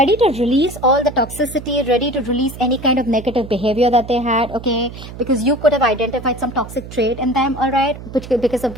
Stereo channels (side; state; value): right; noise; hum, 13 dB below the sound